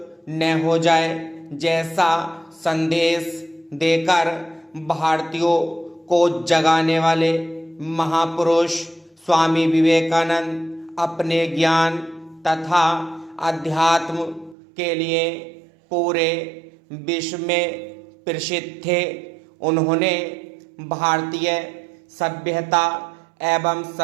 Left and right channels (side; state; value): left; drops out; at 14.6 s